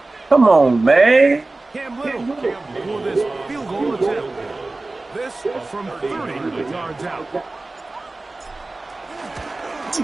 Come on, man. Cam Little for this field goal attempt. This from 30 yards out. You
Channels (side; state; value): left; quieter; 3.1 dB